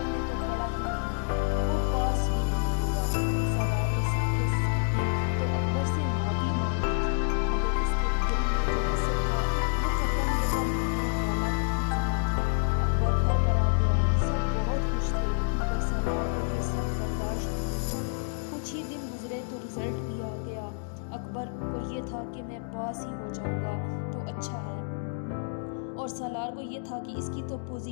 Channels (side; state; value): right; silent; digital silence